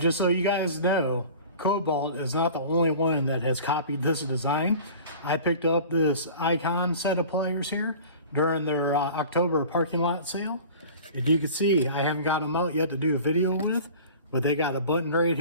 so you guys know, Kobalt is not the only one that has copied this design. I picked up this Icon set of pliers here during their October parking lot sale. If you can see, I haven't got them out yet to do a video with, but they got a button right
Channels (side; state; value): both; inverted; correlation -0.41